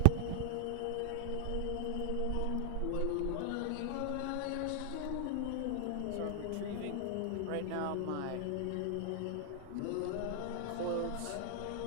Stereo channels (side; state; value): both; different; correlation -0.01